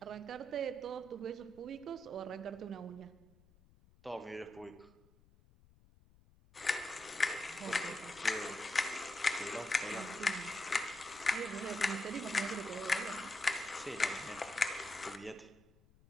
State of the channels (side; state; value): left; noise; rumble, 28 dB below the sound